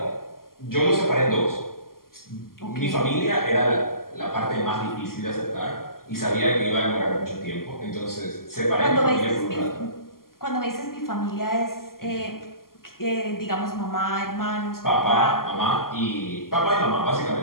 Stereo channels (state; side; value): late; right; 0.92 ms